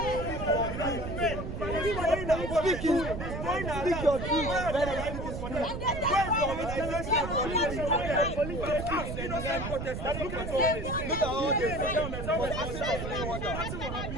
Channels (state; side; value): noise; right; rumble, 5 dB below the sound